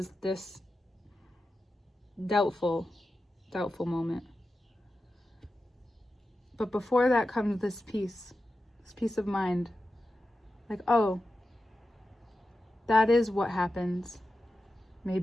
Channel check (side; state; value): both; normal; correlation 0.92